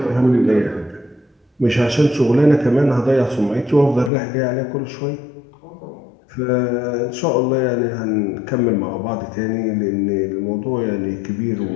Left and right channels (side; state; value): right; drops out; at 4.1 s